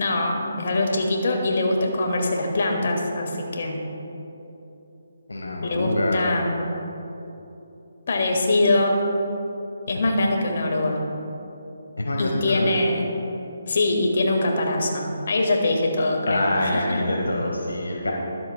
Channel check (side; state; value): both; inverted; correlation -0.83